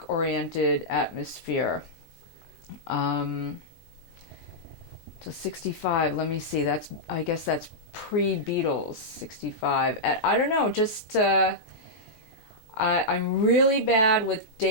atmosphere. To 65, let me see, I guess that's pre-Beatles, 65. I don't know, just I'm really bad with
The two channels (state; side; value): late; right; 13 ms